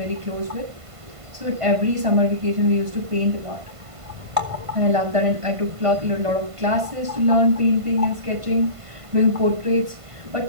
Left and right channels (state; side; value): late; left; 1.5 ms